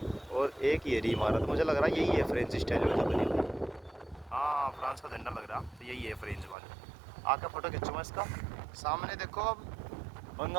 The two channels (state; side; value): drops out; left; at 6.6 s